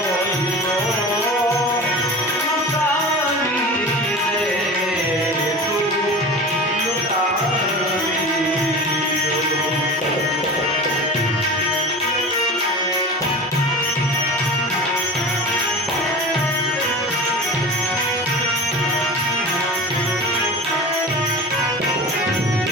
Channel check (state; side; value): normal; both; correlation 0.33